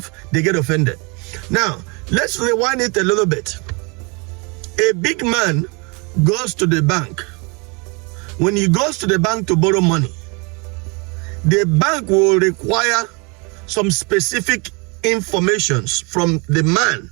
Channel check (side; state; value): left; quieter; 30.5 dB